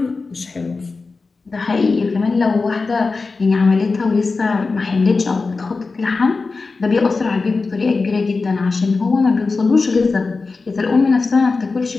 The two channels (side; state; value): right; quieter; 4.1 dB